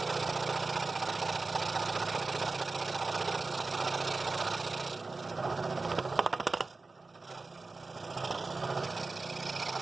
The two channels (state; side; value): quieter; left; 3.7 dB